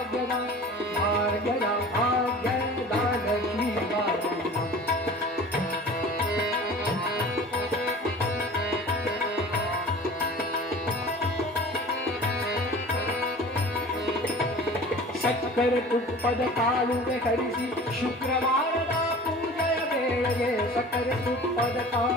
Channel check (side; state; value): both; normal; correlation 0.41